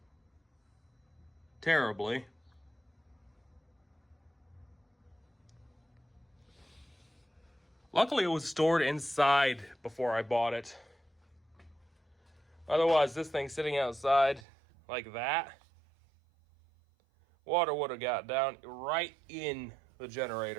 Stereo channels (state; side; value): drops out; left; at 14.5 s